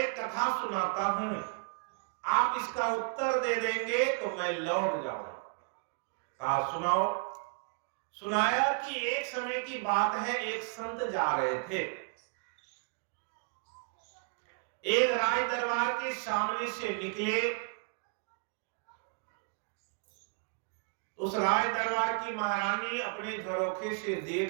कथा सुनाता हूं, आप इसका उत्तर दे देंगे तो मैं लौट जाऊंगा। कहा सुनाओ। सुनाया कि एक समय की बात है, एक संत जा रहे थे, एक राज दरबार के सामने से निकले। उस राज दरबार की महारानी अपने झरोखे से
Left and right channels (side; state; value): left; quieter; 39.1 dB